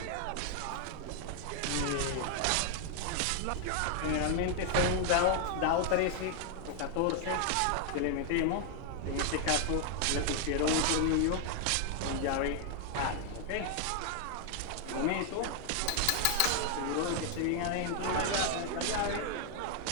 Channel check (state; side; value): different; both; correlation 0.00